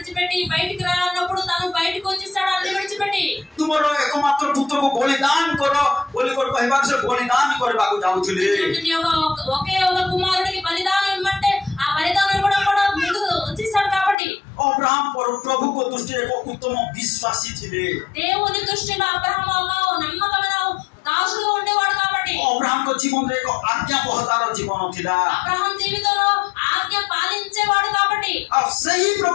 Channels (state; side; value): drops out; right; at 14.2 s